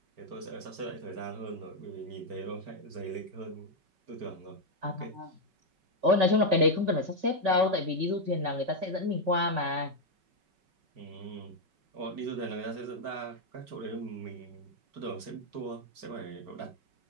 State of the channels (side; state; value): left; late; 5.3 ms